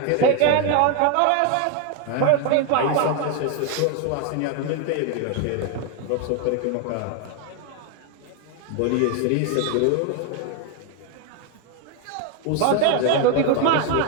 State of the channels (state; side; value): different; both; correlation 0.01